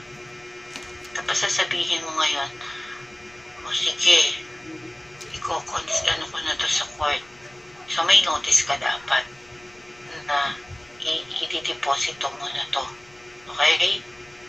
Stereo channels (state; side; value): noise; left; rumble, 29 dB below the sound